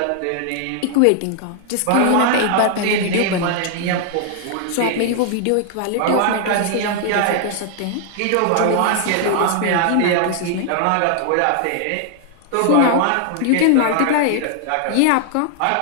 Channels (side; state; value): both; different; correlation 0.00